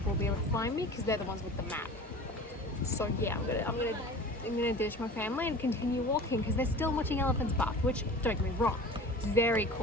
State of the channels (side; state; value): both; normal; correlation 0.38